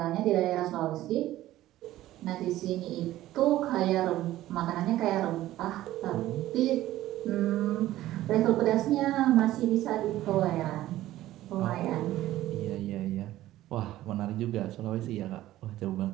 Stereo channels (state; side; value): quieter; left; 14.8 dB